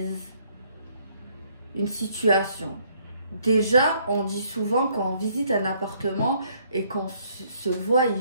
une situation. Déjà, on dit souvent quand on visite un appartement et qu'on se voit y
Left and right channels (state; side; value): inverted; both; correlation -0.66